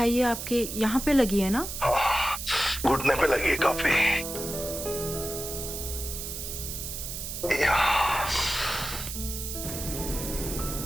आपके यहाँ पे लगी है ना? घुटने पे लगी है काफी।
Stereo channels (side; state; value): right; noise; hiss, 7 dB below the sound